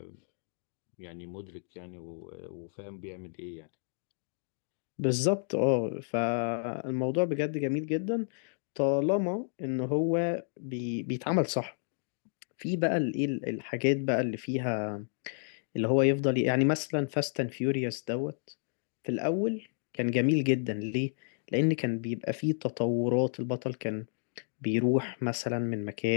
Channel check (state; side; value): silent; right; digital silence